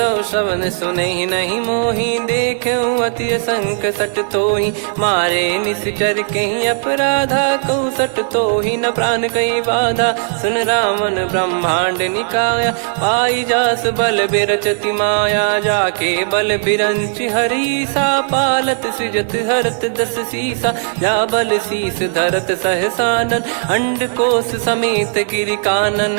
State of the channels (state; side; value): silent; left; digital silence